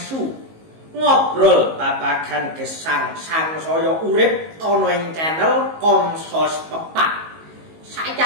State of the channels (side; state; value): left; late; 19 ms